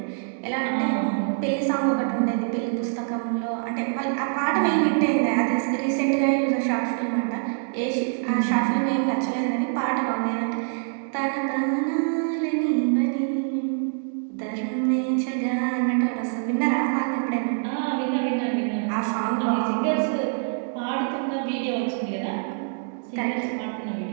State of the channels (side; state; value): left; silent; digital silence